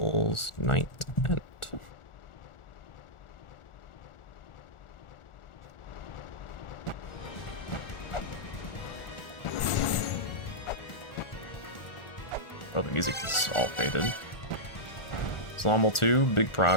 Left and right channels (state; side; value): late; right; 1.4 ms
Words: night end. Oh, the music is all faded. Slammel 2, big